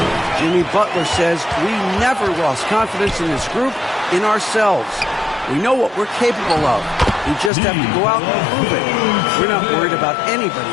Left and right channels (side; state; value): right; drops out; at 7.5 s